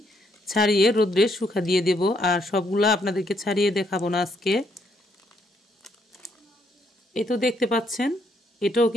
ছাড়িয়ে রোদ্রে শুকা দিয়ে দেব। আর সবগুলা আপনাদেরকে ছাড়িয়ে দেখাবো না আজকে। এই তো দেখতে পাচ্ছেন, এটাও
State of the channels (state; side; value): normal; both; correlation 0.73